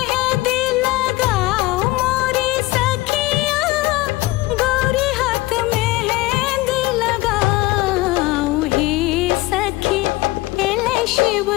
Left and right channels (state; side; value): quieter; right; 19.6 dB